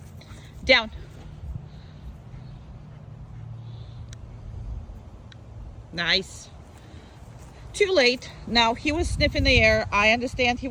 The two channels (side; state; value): both; identical; correlation 1.00